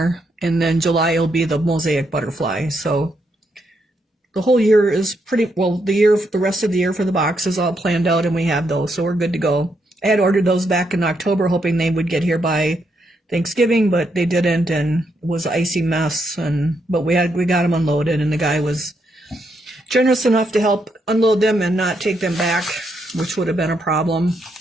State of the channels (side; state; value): both; normal; correlation 0.78